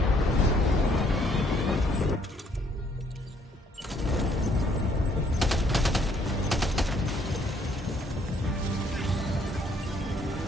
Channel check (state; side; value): normal; both; correlation 0.66